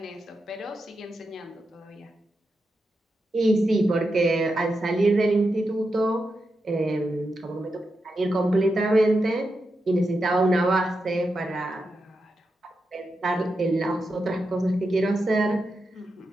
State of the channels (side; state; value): both; normal; correlation 0.87